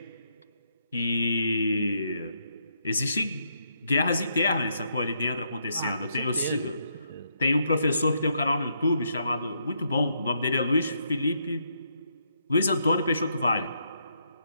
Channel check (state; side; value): inverted; both; correlation -0.77